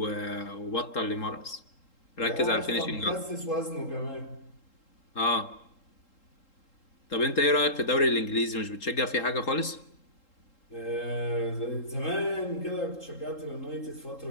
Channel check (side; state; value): right; late; 3.8 ms